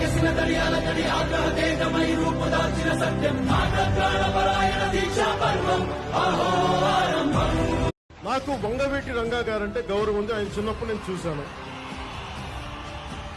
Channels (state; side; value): identical; both; correlation 1.00